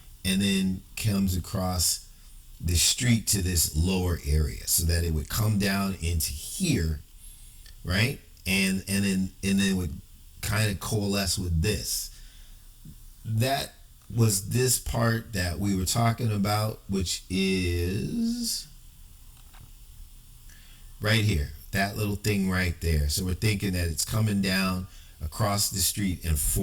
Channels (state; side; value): identical; both; correlation 1.00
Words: and then comes across the street to this lower area, so that it would come down into here, right, and then it would kind of coalesce with this. That was this part that we were talking about, which is right here, that little thing right there. So we're thinking that it's coming down across the street and